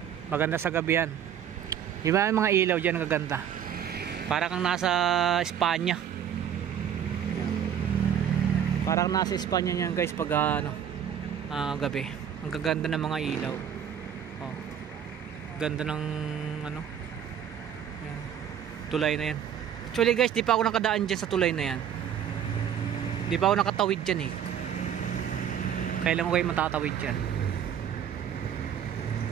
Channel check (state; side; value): quieter; left; 9.0 dB